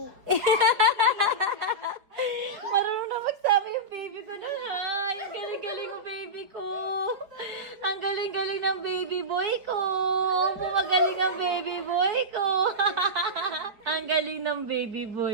Marunong na magsabi yung baby ko na hi. Ang galing-galing mo, baby ko. Ang galing-galing ng baby boy ko. Magaling ang baby boy ko. Ang galing ng baby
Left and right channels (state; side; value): late; left; 5.0 ms